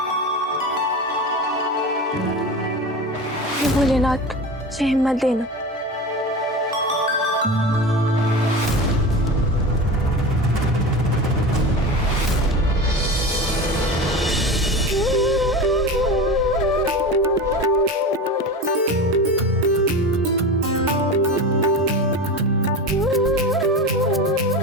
हे भोलेनाथ, मुझे हिम्मत देना।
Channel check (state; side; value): normal; both; correlation 0.28